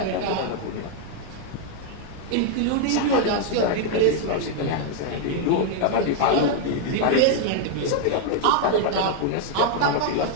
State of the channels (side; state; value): both; different; correlation 0.00